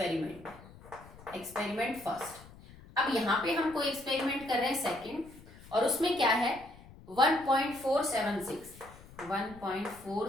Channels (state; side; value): noise; left; rumble, 20 dB below the sound